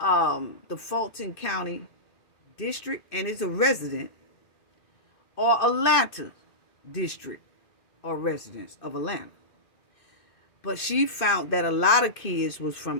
Fulton County district and is a resident, or Atlanta district or residents of Atlanta. But she found that a lot of kids was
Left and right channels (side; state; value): right; late; 2.6 ms